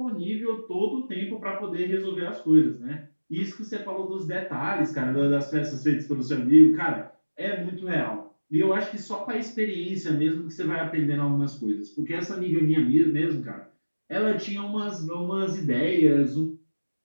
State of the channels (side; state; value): both; inverted; correlation -1.00